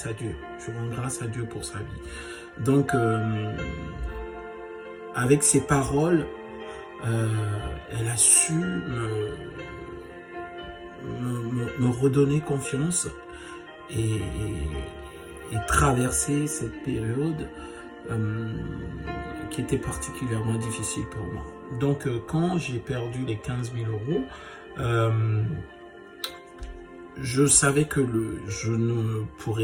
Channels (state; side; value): identical; both; correlation 1.00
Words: à Dieu. Je rends grâce à Dieu pour sa vie. Donc, avec ses paroles, elle a su me redonner confiance et traverser cette période qui était particulièrement difficile pour moi. Donc, quand j'ai perdu les 15 000 euros, je savais que je ne